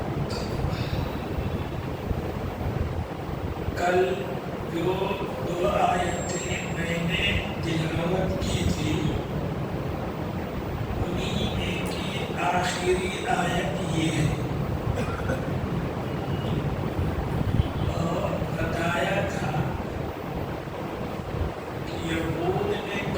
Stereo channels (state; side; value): identical; both; correlation 1.00